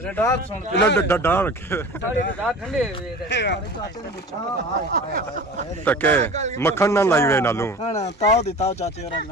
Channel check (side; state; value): both; normal; correlation 0.38